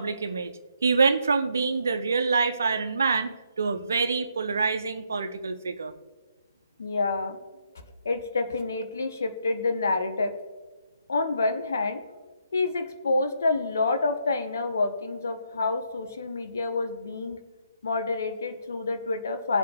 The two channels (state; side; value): inverted; both; correlation -0.75